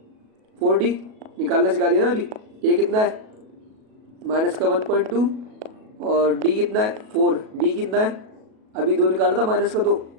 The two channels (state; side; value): late; left; 37 ms